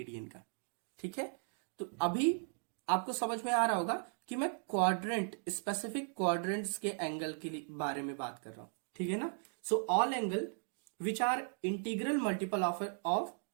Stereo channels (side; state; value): left; silent; 53 dB below the other